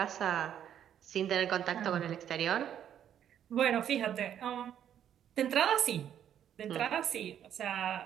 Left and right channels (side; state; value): left; quieter; 9.8 dB